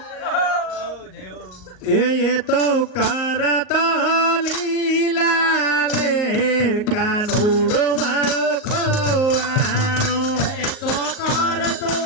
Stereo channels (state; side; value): late; right; 38 ms